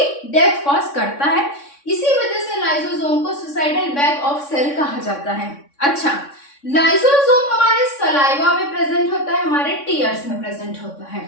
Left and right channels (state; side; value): late; right; 3.6 ms